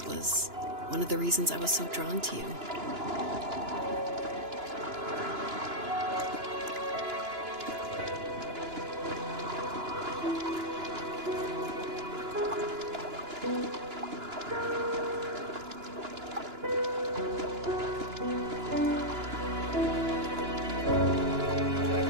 was one of the reasons I was so drawn to you.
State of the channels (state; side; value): late; left; 2.9 ms